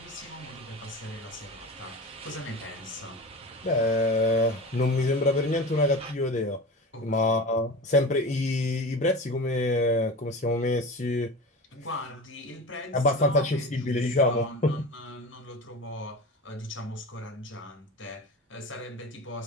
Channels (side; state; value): both; normal; correlation 0.31